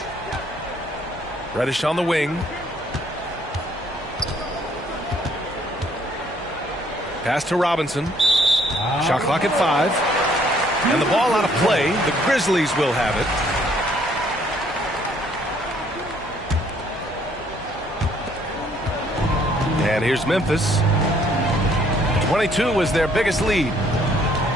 Reddish on the wing. Pass to Robinson. Shot clock at 5. And the ball out of play. The Grizzlies will have it. And here's Memphis. 22 was their biggest lead.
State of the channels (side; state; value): both; normal; correlation 0.64